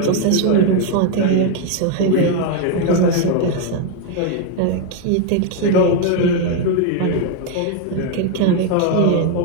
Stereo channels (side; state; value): both; different; correlation 0.01